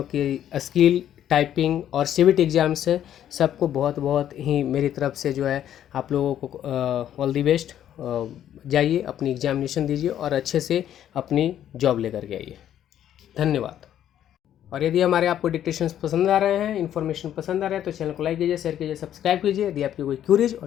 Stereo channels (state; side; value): quieter; right; 10.8 dB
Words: की स्किल टाइपिंग और सीवीट एग्ज़ाम्स है, सबको बहुत बहुत ही मेरी तरफ से जो है आप लोगों को ऑल दी बेस्ट. जाइए अपनी एग्जामिनेशन दीजिए और अच्छे से अपनी जॉब लेकर के आइए. धन्यवाद. और यदि हमारे आपको डिक्टेशंस पसंद आ रहे हैं, इन्फॉर्मेशन पसंद आ रहा है, तो चैनल को लाइक कीजिए, शेयर कीजिए, सब्सक्राइब कीजिए. यदि आपकी कोई क्यूरीज